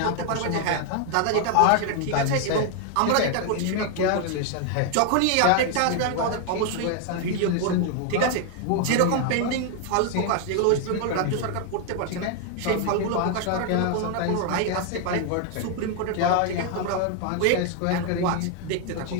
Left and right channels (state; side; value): different; both; correlation 0.00